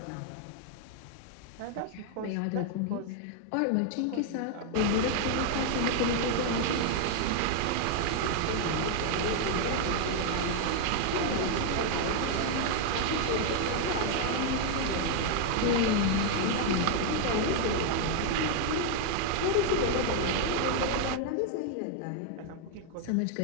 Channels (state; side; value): different; both; correlation 0.00